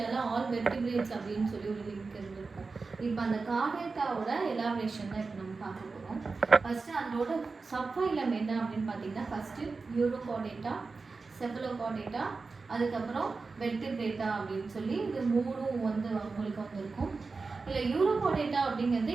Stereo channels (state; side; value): quieter; left; 4.2 dB